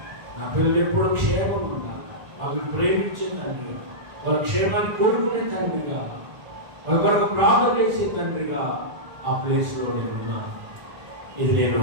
నా పిల్లలు ఎప్పుడు క్షేమం ఉండాలి. వాళ్ళని ప్రేమించే తండ్రిగా, వాళ్ళ క్షేమాన్ని కోరుకునే తండ్రిగా, వాళ్ళ కొరకు ప్రార్థన చేసే తండ్రిగా ఆ ప్లేస్లో నేను ఉన్నాను. ఇది నేను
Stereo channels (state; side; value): late; left; 1.4 ms